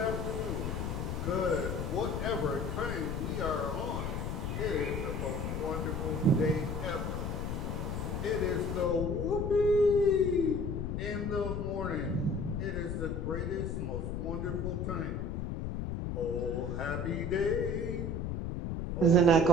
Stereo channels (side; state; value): left; noise; rumble, 2 dB below the sound